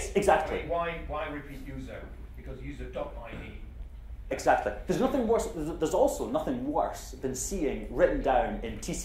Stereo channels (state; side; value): identical; both; correlation 1.00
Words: exactly. I mean, why repeat user? Because user.id. Exactly. There's nothing worse. There's also nothing worse than seeing written down in